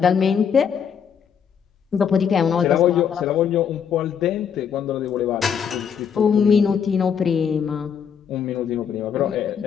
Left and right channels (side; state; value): right; quieter; 7.5 dB